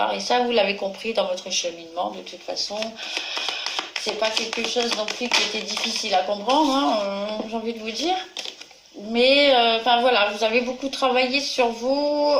et ça vous l'avez compris dans votre cheminement de toute façon. C'est pas quelque chose non plus qui était difficile à comprendre, hein, j'ai envie de vous dire. Mais enfin voilà, vous avez beaucoup travaillé sur vous,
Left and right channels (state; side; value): identical; both; correlation 1.00